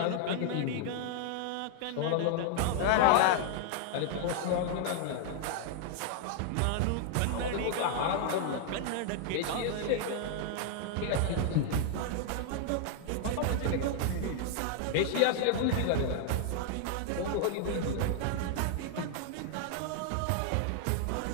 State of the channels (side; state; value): both; different; correlation 0.00